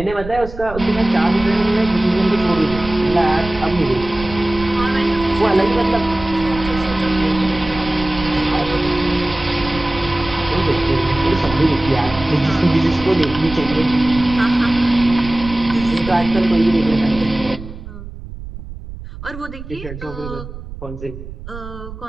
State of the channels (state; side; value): noise; right; rumble, 12 dB below the sound